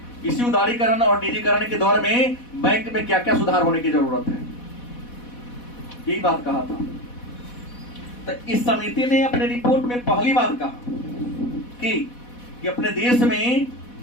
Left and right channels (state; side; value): late; right; 4.1 ms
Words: इसी उदारीकरण और निजीकरण के दौर में बैंक में क्या क्या सुधार होने की जरूरत है, यही बात कहा था। तो इस समिति ने अपने रिपोर्ट में पहली बात कहा कि अपने देश में